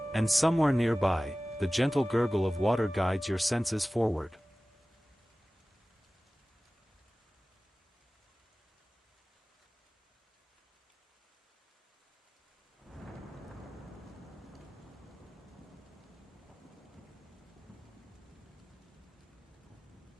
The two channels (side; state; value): both; normal; correlation 0.97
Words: And somewhere nearby, the gentle gurgle of water guides your senses forward.